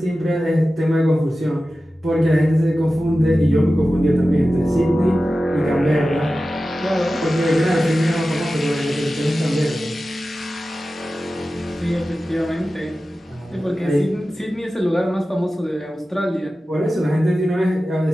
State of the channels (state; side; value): normal; both; correlation 0.94